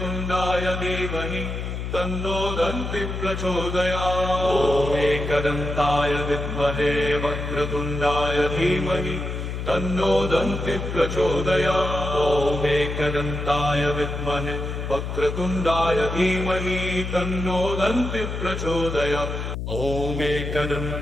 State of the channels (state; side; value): noise; left; hum, 5 dB below the sound